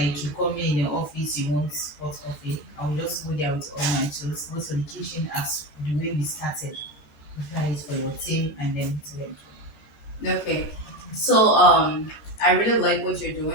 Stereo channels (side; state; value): right; late; 13 ms